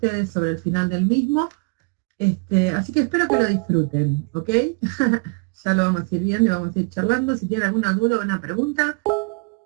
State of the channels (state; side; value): quieter; left; 32.4 dB